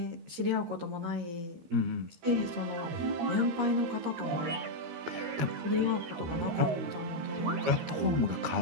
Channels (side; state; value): left; late; 13 ms